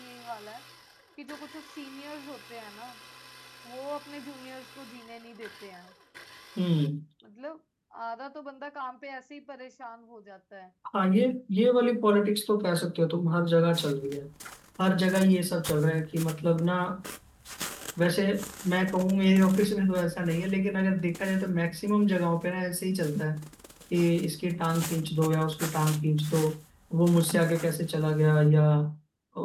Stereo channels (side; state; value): both; identical; correlation 1.00